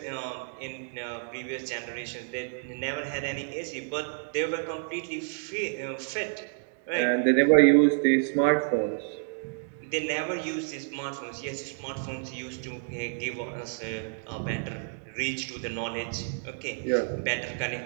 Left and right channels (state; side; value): silent; left; digital silence